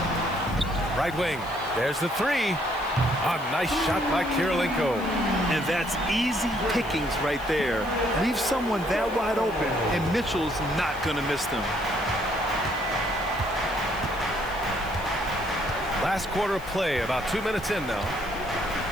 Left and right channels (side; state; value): left; noise; hiss, 22 dB below the sound